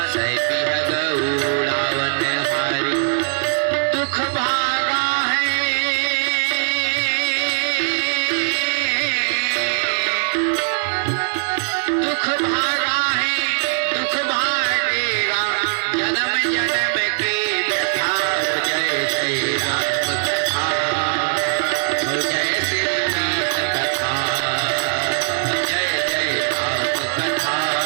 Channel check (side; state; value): left; silent; 66 dB below the other